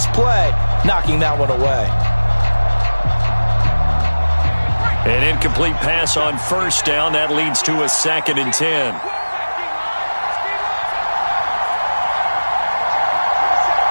play, knocking that one away. An incomplete pass on 1st down. That leads to a 2nd and 10.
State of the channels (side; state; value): both; inverted; correlation -1.00